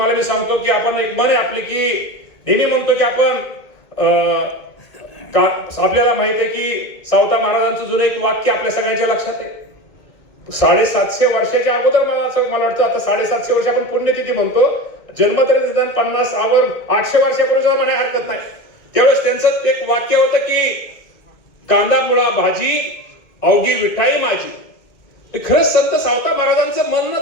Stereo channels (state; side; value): late; right; 2.1 ms